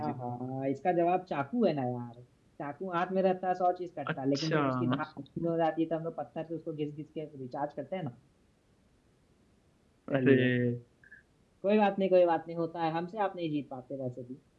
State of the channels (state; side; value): identical; both; correlation 1.00